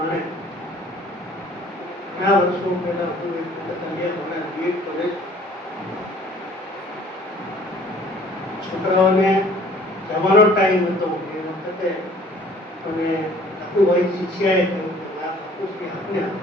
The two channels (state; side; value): normal; both; correlation 0.53